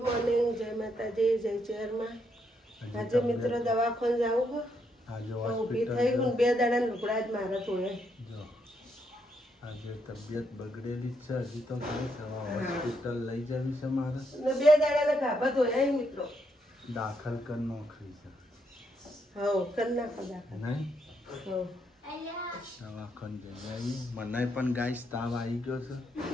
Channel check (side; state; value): both; normal; correlation 0.77